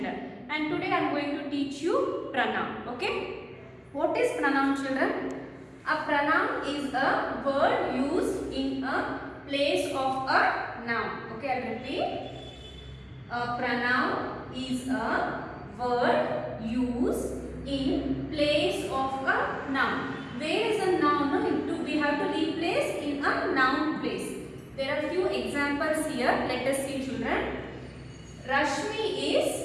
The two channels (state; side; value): identical; both; correlation 1.00